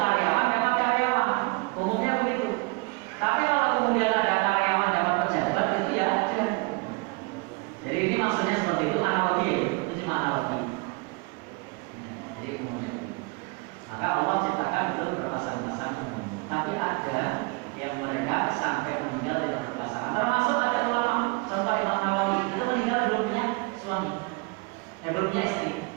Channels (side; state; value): left; quieter; 28.8 dB